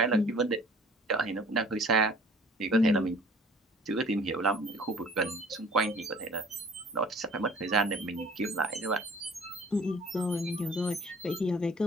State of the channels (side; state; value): both; normal; correlation 0.50